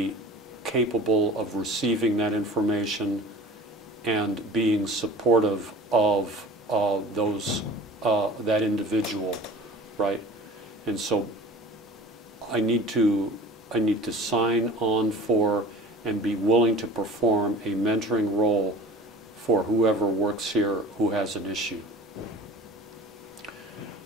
capable of receiving that information and being supportive of that individual, right? And so I need to sign on for and be willing to perform a mentoring role for whoever works here who has an issue.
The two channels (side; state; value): both; normal; correlation 0.41